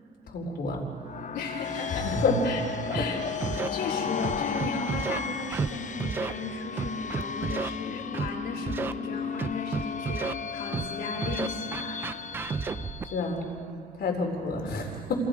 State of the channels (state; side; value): normal; both; correlation 0.40